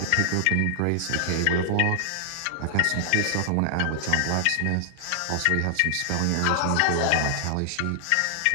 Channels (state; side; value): different; both; correlation 0.00